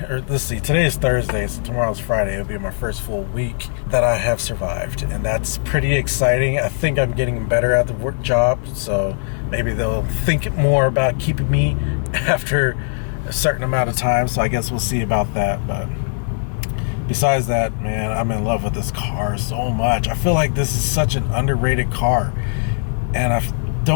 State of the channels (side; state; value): right; silent; digital silence